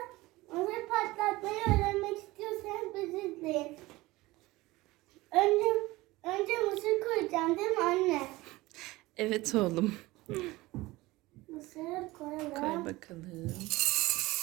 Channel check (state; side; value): quieter; left; 19.9 dB